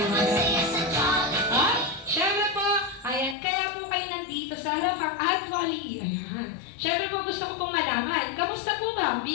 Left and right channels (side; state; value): right; drops out; at 3.4 s